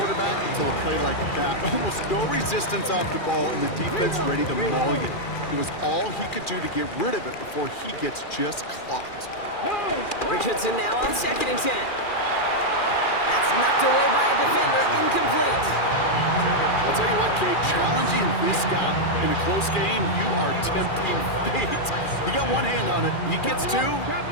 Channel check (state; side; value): late; right; 2.4 ms